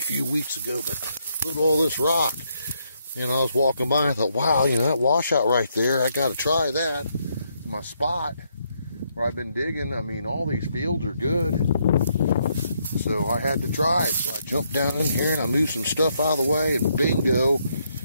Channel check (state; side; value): inverted; both; correlation -0.76